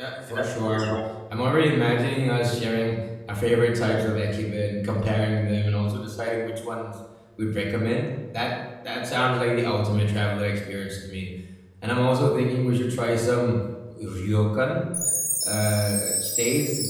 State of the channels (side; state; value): both; identical; correlation 1.00